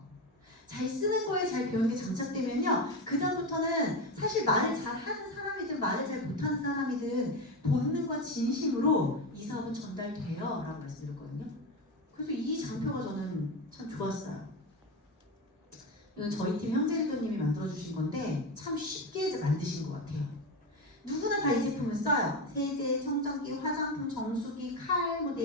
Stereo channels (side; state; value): both; normal; correlation 0.17